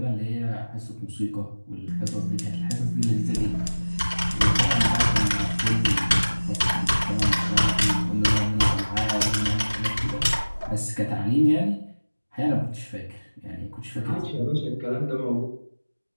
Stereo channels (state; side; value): inverted; both; correlation -1.00